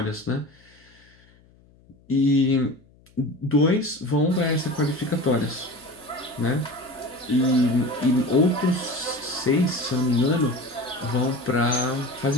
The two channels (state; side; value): noise; left; hum, 29 dB below the sound